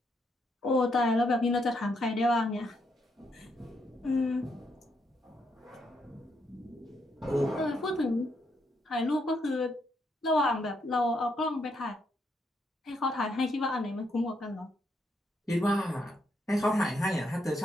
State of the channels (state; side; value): normal; both; correlation 0.77